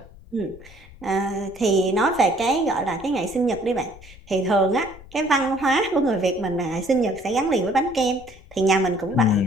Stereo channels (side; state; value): left; noise; rumble, 21 dB below the sound